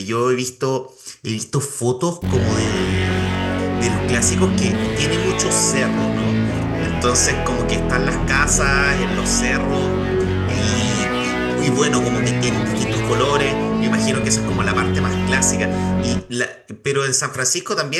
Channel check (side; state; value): both; identical; correlation 1.00